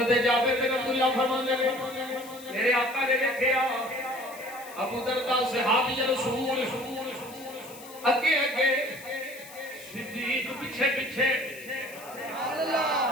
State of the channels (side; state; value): left; noise; hiss, 18 dB below the sound